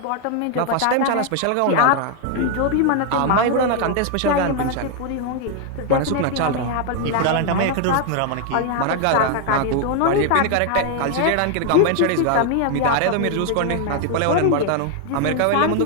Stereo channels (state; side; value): different; both; correlation 0.00